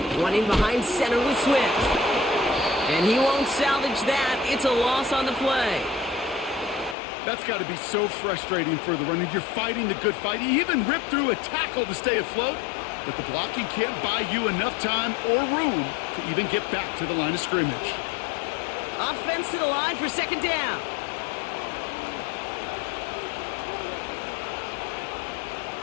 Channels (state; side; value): drops out; right; at 7.0 s